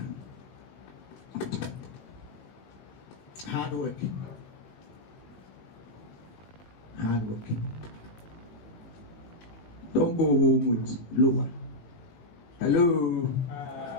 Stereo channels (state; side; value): late; right; 18 ms